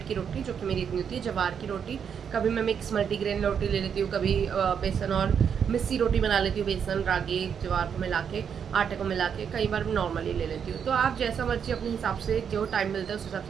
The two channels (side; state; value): left; quieter; 7.5 dB